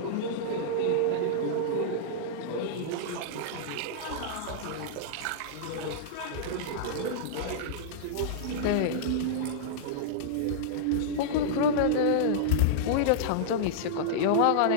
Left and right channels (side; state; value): both; different; correlation -0.02